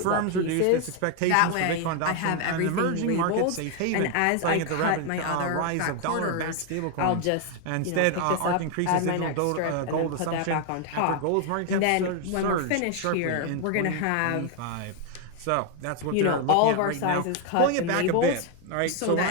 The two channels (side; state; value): both; different; correlation 0.01